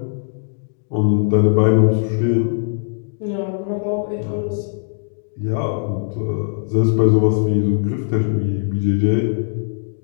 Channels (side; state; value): right; silent; digital silence